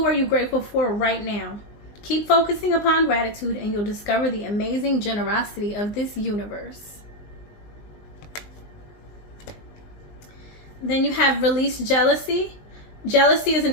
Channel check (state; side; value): late; right; 19 ms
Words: are you grateful for right now? Keep focusing upon gratitude and you'll discover the amazing generosity of this universe. Then you have release jealousy. Jealousy is an